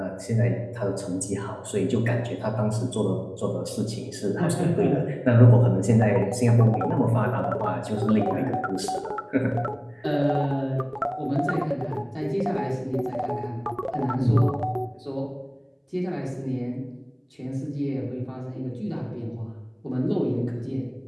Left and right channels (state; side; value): identical; both; correlation 1.00